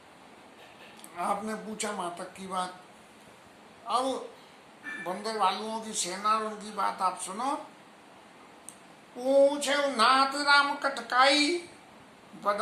आपने पूछा मातक की बात, अब बंदर भालुओं की सेना और उनकी बात आप सुनो। पूछे नाथ राम कटकाई,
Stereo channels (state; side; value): identical; both; correlation 1.00